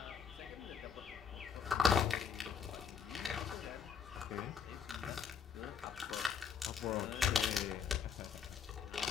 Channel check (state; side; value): quieter; right; 6.6 dB